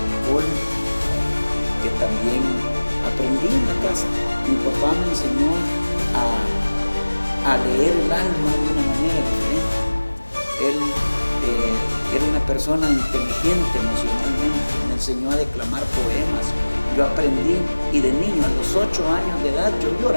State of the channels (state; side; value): inverted; both; correlation -1.00